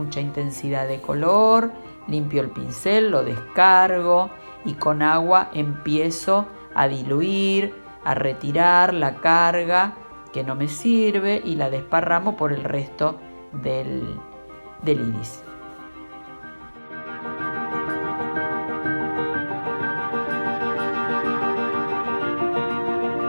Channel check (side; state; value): both; inverted; correlation -1.00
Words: intensidad de color, limpio el pincel, lo descargo y con agua empiezo a diluir, a retirar la carga que no me sirve y la desparramo por el resto del iris.